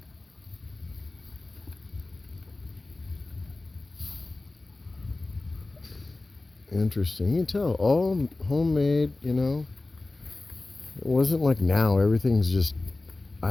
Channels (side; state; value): right; quieter; 3.1 dB